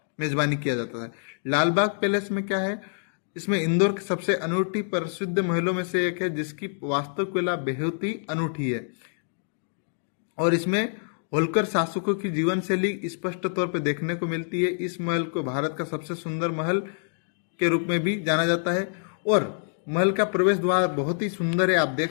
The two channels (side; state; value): right; silent; digital silence